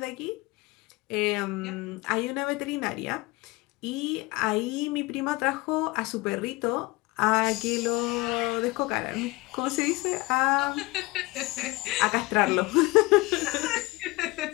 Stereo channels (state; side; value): quieter; right; 22.4 dB